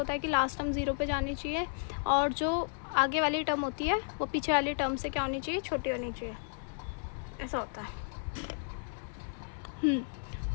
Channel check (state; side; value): silent; right; 56 dB below the other